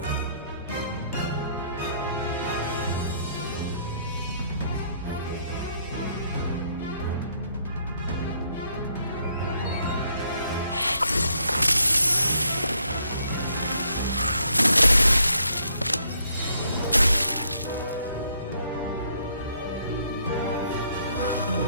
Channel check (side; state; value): both; inverted; correlation -0.70